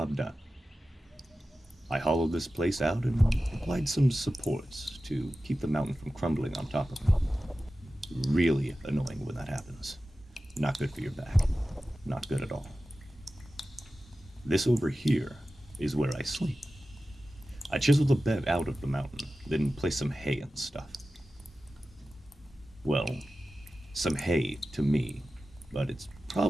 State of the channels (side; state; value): both; normal; correlation 0.94